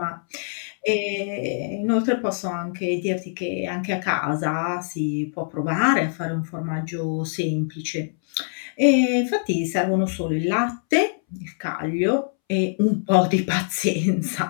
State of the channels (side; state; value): right; silent; 63 dB below the other